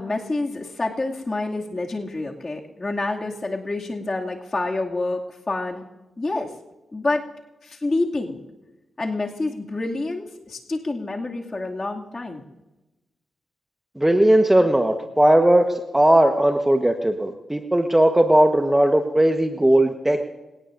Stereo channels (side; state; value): both; normal; correlation 0.97